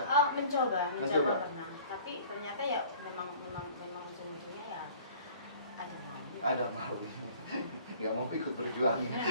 mencoba Mencoba. pernah. Tapi ternyata ya memang ujung-ujungnya ya ada mau. Ada mau. Nggak mau ikut berjuang.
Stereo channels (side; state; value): both; inverted; correlation -0.49